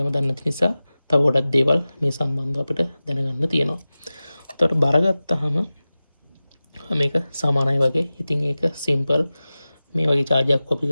දන්න නිසා තව ගොඩක් දේවල් මේ සම්බන්ධව අපිට දැනගන්න තියෙනවා. උතර බර ගත්තාම මේක සමානයි වගේ. ඉතින් ඒක සිම්පල්. මේ වගේ charger කොපි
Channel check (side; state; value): both; inverted; correlation -0.96